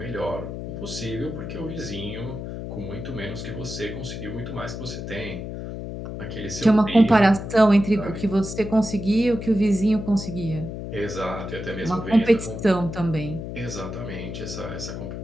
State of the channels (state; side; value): noise; left; hum, 7 dB below the sound